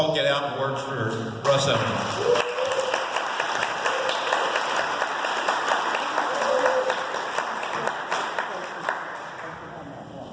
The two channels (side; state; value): both; identical; correlation 1.00